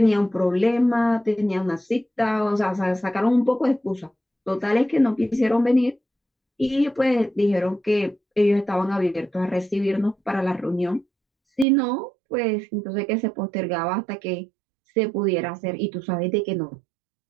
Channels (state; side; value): drops out; left; at 11.7 s